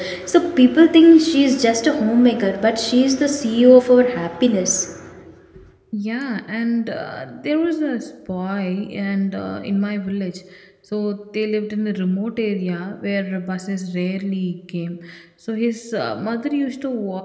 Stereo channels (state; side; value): identical; both; correlation 1.00